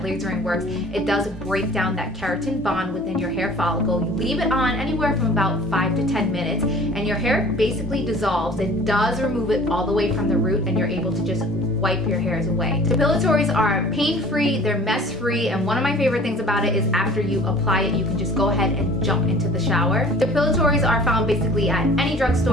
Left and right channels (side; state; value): both; normal; correlation 0.47